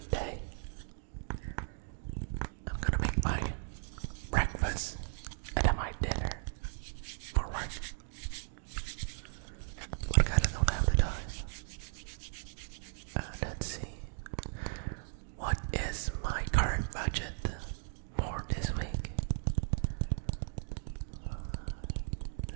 day. I'm gonna make my breakfast and then my dinner for work. But I kinda don't have the time. Let's see. What is my current budget for this week?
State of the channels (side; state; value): left; silent; digital silence